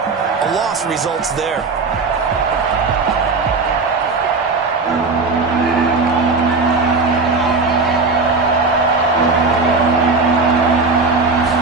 loss results there.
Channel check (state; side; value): quieter; left; 4.0 dB